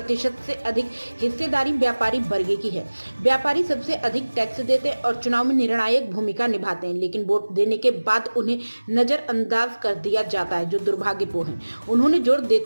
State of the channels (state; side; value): inverted; both; correlation -1.00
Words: से अधिक हिस्सेदारी व्यापारी वर्ग की है। व्यापारी सबसे अधिक टैक्स देते हैं और चुनाव में निर्णायक भूमिका निभाते हैं, लेकिन वोट देने के बाद उन्हें नजरअंदाज कर दिया जाता है, जो दुर्भाग्यपूर्ण है। उन्होंने जोर